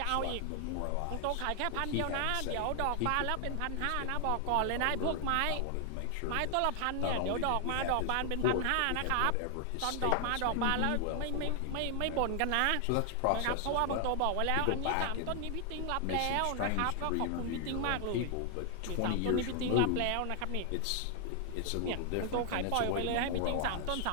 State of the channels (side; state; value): both; different; correlation 0.00